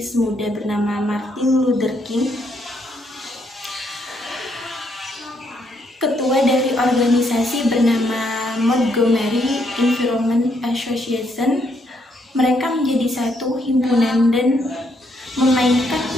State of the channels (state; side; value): normal; both; correlation 0.74